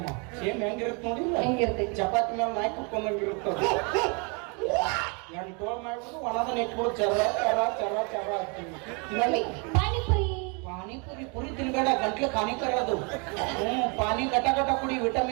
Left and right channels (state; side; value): quieter; left; 33.6 dB